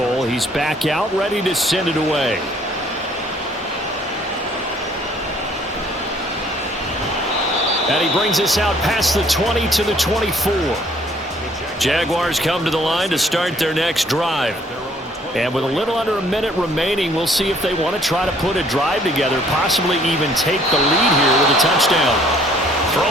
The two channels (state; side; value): normal; both; correlation 0.60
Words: he's back out ready to send it away. And he brings us out past the 20 to the 24. Jaguars come to the line to start their next drive. And with a little under a minute remaining, we'll see if they want to try to put a drive together, possibly even take the lead here with a touchdown.